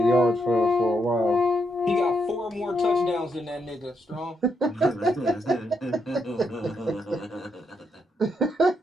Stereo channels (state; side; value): normal; both; correlation 0.79